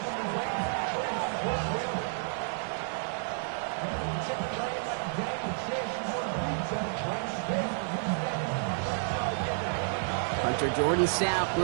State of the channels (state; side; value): silent; left; digital silence